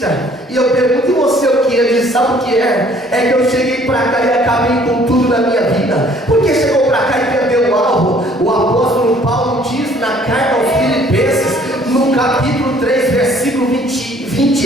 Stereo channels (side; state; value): both; normal; correlation 0.58